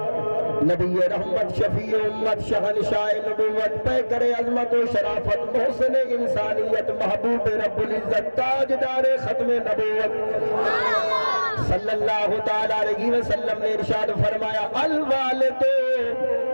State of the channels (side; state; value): both; inverted; correlation -1.00